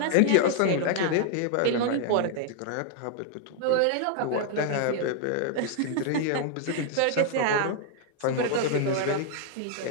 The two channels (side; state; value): both; different; correlation 0.00